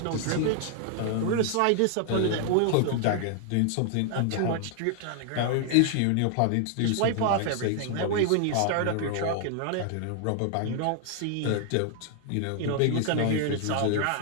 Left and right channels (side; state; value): both; different; correlation 0.00